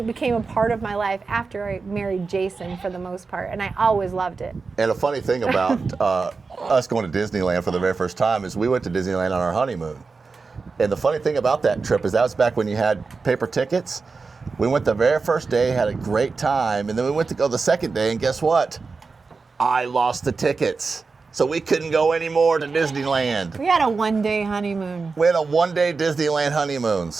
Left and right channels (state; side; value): quieter; left; 4.4 dB